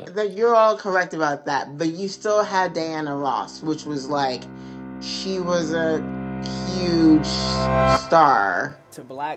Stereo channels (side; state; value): both; identical; correlation 1.00